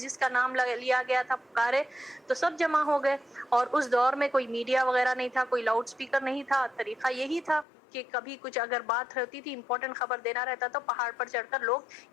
کا نام لیا گیا تھا پکارے تو سب جمع ہو گئے. اور اس دور میں کوئی میڈیا وغیرہ نہیں تھا، کوئی لاؤڈ سپیکر نہیں تھا، طریقہ یہی تھا کہ کبھی کچھ اگر بات ہوتی تھی، امپورٹنٹ خبر دینا رہتا تو پہاڑ پر چڑھ کر لوگ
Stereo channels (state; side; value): drops out; right; at 7.7 s